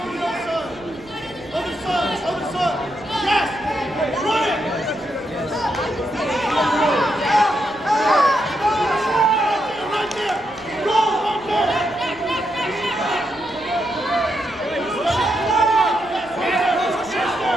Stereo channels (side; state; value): right; noise; rumble, 25 dB below the sound